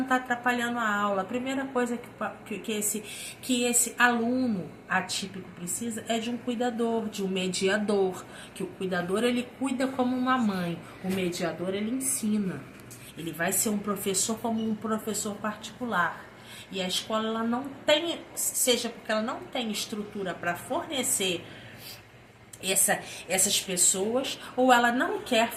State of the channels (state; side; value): identical; both; correlation 1.00